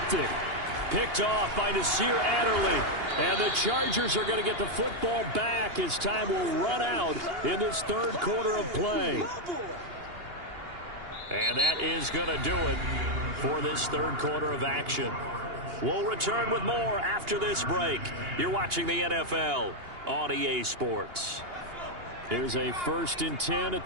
Picked off by Nasir Adderley. And the Chargers are going to get the football back as time will run out in this third quarter of play. And that is going to do it for this third quarter of action. We'll return with more after this break. You're watching the NFL on EA Sports. Here's a 1st and 10 at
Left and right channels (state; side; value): late; left; 2.8 ms